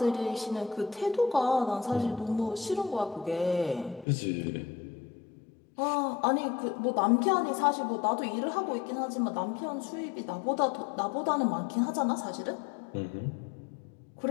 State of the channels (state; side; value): drops out; right; at 4.0 s